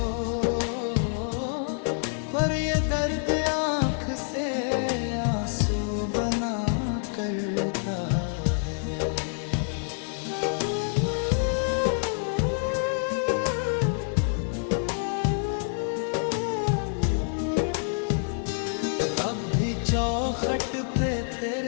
पर ये दर्द आँख से आंसू बना करता है। अब भी चौखट पे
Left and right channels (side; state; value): right; silent; 60 dB below the other